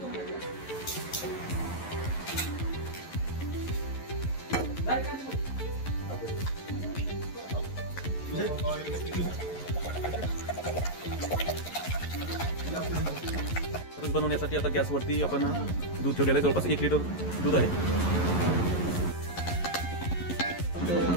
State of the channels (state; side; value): late; right; 11 ms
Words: खरूज बनवण्यासाठी आता गॅसवरती आपण दूध ठेवलेलं आहे. जवळपास 1 लिटर दूध आहे.